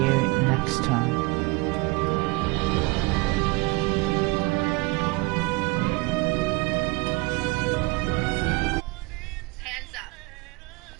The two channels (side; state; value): left; quieter; 25.3 dB